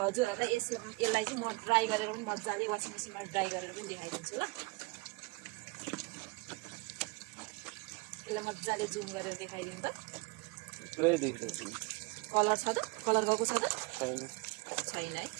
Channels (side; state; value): left; quieter; 26.5 dB